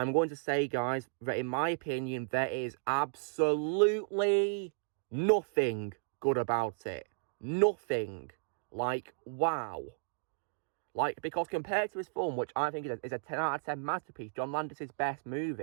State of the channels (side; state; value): left; silent; digital silence